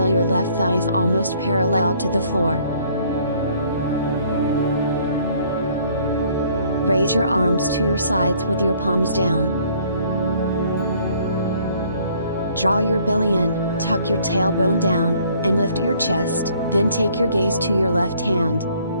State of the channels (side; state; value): both; inverted; correlation -0.60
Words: your left thigh is almost parallel to the floor. Raise your arms to your sides with your palms down. Draw your belly in, tuck your tailbone down, and lift your chest, then take your gaze to your left hand.